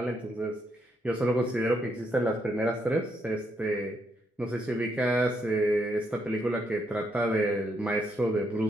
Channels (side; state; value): both; normal; correlation 0.77